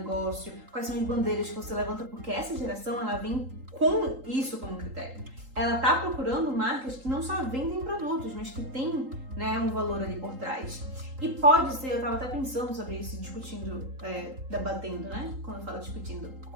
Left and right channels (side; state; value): left; late; 3.8 ms